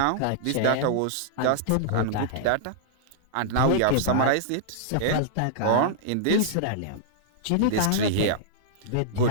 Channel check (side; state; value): both; different; correlation -0.02